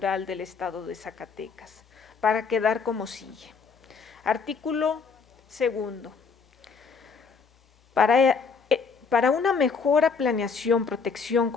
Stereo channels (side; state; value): right; quieter; 5.3 dB